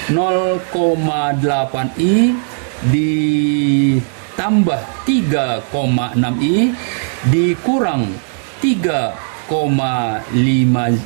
0,8i ditambah 3,6i dikurang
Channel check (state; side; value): silent; left; digital silence